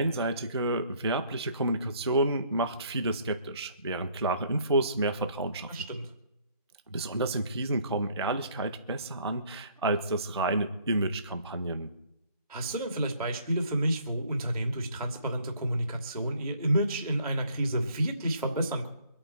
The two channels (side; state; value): both; inverted; correlation -0.61